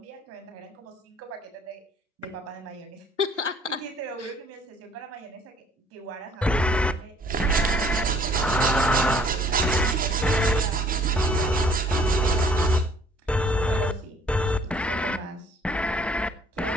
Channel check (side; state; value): both; normal; correlation 0.58